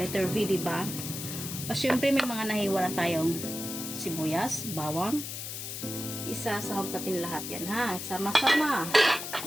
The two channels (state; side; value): noise; left; hiss, 7 dB below the sound